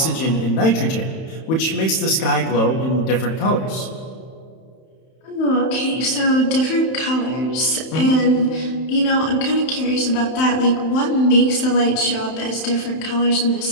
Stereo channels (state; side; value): late; right; 31 ms